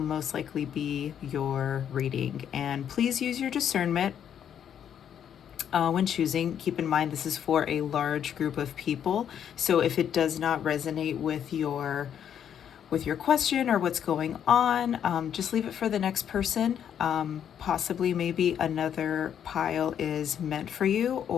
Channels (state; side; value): quieter; right; 9.0 dB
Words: likely be your reading. And please use your discernment when choosing. Keep in mind this is for a large group of people, so if it does not resonate with your question or what's going on, just leave it for the next person. Possibly maybe another pile is meant for you,